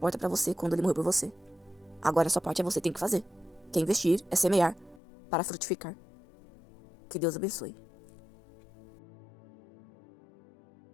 para você quando ele morreu por você. Agora a sua parte é você tem que fazer. Que é investir, é semear para frutificar. Que Deus abençoe.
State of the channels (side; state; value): right; drops out; at 5.0 s